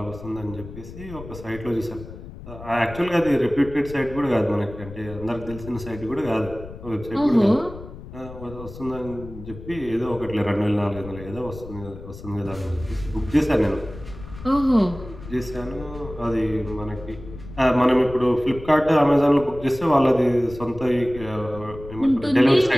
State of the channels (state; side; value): noise; left; rumble, 14 dB below the sound